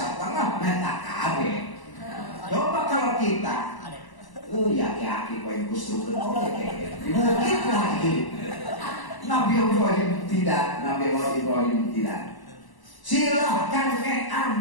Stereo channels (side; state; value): right; late; 1.0 ms